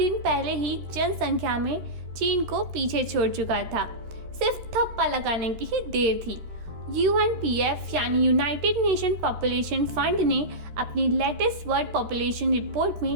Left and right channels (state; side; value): late; left; 13 ms